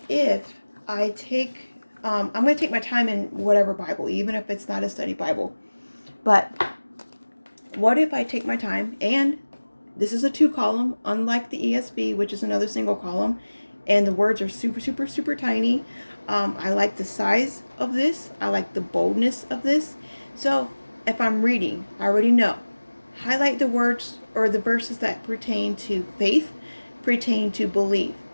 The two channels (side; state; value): both; inverted; correlation -1.00